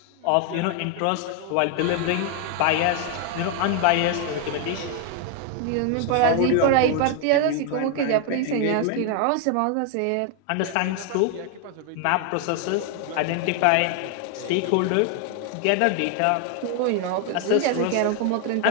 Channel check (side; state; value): both; different; correlation 0.01